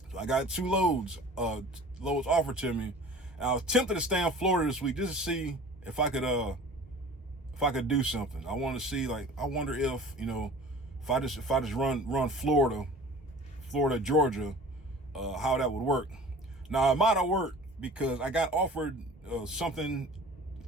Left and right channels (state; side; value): normal; both; correlation 0.43